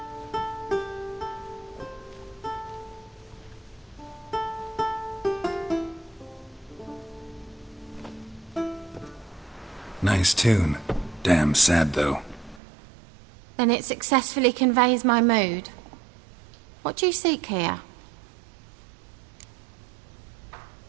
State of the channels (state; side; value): drops out; left; at 12.6 s